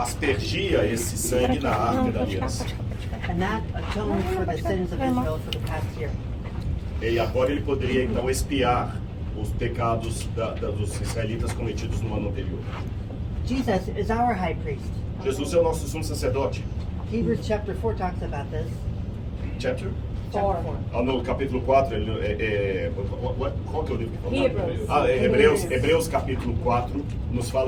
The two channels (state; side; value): identical; both; correlation 1.00